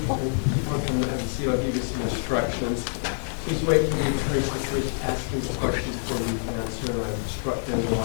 keep on coming to have a seat. I'll give you some instructions. Please wait for the attorneys to finish asking the questions before you answer, and I've instructed them to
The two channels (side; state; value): right; silent; digital silence